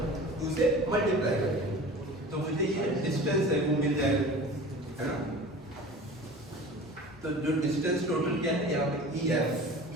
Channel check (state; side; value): normal; both; correlation 0.39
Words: 2 से मल्टीप्लाई करेंगे, तो मुझे ये डिस्टेंस है वो मिल जाएगा, है ना। तो जो डिस्टेंस टोटल क्या है यहाँ पे ई एफ